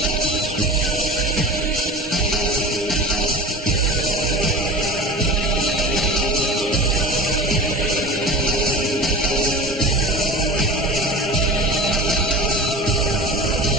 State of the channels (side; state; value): both; normal; correlation 0.34